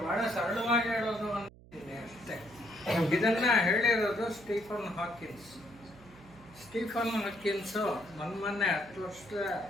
ಬಹಳ ಸರಳವಾಗಿ ಹೇಳೋದು ಅಂತೀನಿ ಅಷ್ಟೇ. ಇದನ್ನ ಹೇಳಿರೋದು ಸ್ಟೀಫನ್ ಹಾಕಿನ್ಸ್. ಮೊನ್ನೆ 10 ವರ್ಷ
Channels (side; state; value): right; noise; hum, 22 dB below the sound